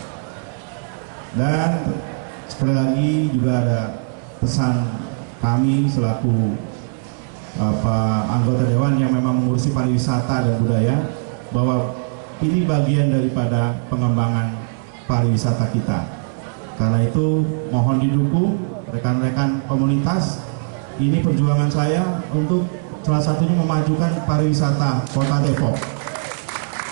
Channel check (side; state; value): left; silent; digital silence